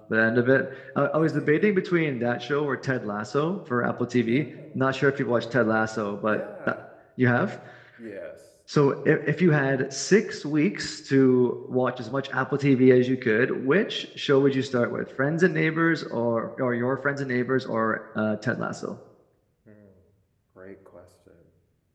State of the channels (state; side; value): identical; both; correlation 1.00